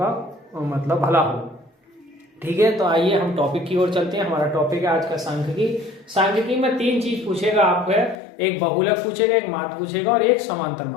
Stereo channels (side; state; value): right; drops out; at 8.2 s